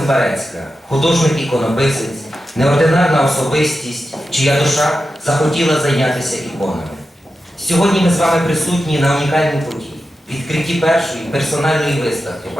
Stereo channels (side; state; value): both; normal; correlation 0.90